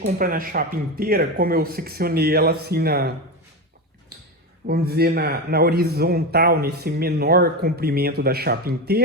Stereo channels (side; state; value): both; normal; correlation 0.18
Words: na chapa inteira, como eu seccionei ela assim vamos dizer, na horizontal, nesse menor comprimento da chapa